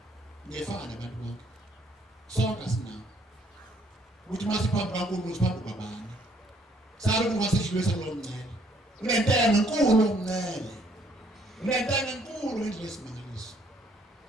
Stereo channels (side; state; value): both; normal; correlation 0.65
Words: Ngefana nabantu bonke. Sonke sinawo. Uthi masiphambi kaNkulunkulu siphambi kwabani. Sabe kungasedlulisa lo mncele. Unentenge enkulu omncele. Unentenge enkulu endlela esimangaliso.